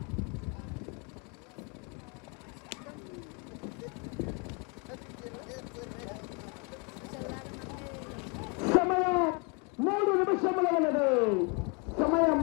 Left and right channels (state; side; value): quieter; right; 33.4 dB